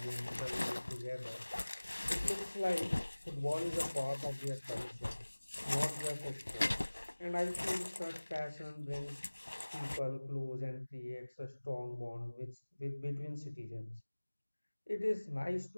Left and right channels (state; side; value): inverted; both; correlation -1.00